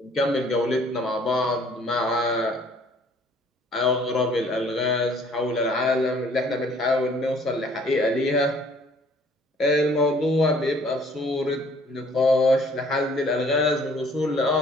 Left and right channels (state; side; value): normal; both; correlation 0.57